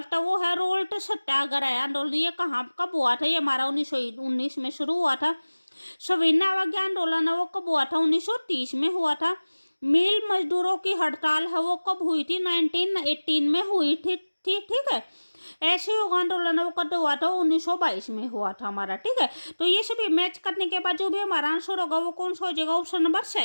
है वो है रोल्ट सत्याग्रह आंदोलन। ये कहाँ कब हुआ था, ये हमारा 1919 में शुरू हुआ था। सविनय अवज्ञा आंदोलन है वो कब हुआ था, 1930 में हुआ था। मिल मजदूरों की हड़ताल है वो कब हुई थी, 1918 में हुई थी। ठीक है, ऐसे योग आंदोलन वो कब हुआ था, 1922 में हुआ था हमारा। ठीक है, तो ये सभी मैच करने के बाद जो भी हमारा आंसर होगा वो कौन सा हो जाएगा, ऑप्शन नंबर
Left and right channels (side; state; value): both; inverted; correlation -1.00